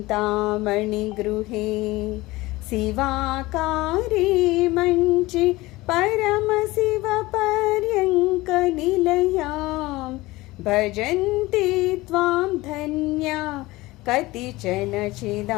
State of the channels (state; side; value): quieter; right; 20.0 dB